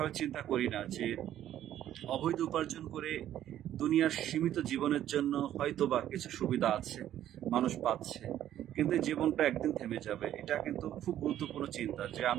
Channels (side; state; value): left; quieter; 11.8 dB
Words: চিন্তা করি না যে অবৈধ উপার্জন করে দুনিয়ার সীমিত জীবনের জন্য হয়তোবা কিছু সুবিধা আছে, মানুষ পাচ্ছে, কিন্তু এই জীবনটা একদিন থেমে যাবে। এটা কিন্তু খুব গুরুত্বপূর্ণ চিন্তা, যে